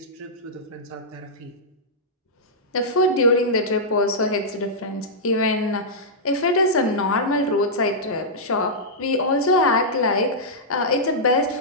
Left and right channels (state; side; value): normal; both; correlation -0.11